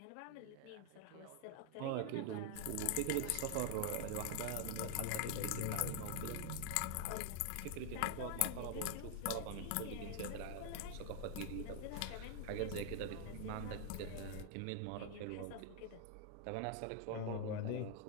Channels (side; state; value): both; different; correlation 0.00